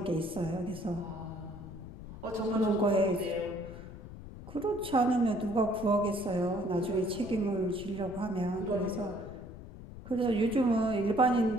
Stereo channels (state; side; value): noise; left; rumble, 14 dB below the sound